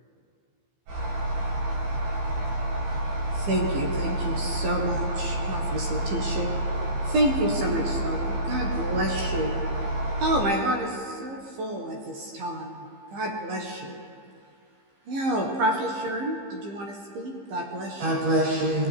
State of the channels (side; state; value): left; late; 15 ms